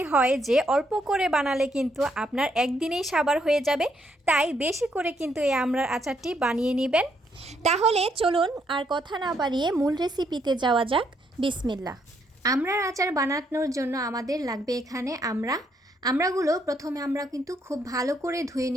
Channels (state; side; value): normal; both; correlation 0.73